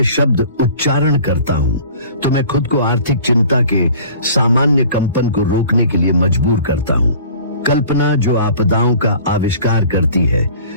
शब्द उच्चारण करता हूँ तो मैं खुद को आर्थिक चिंता के सामान्य कंपन को रोकने के लिए मजबूर करता हूँ। कल्पना जो आपदाओं का आविष्कार करती है,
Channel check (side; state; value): both; inverted; correlation -0.46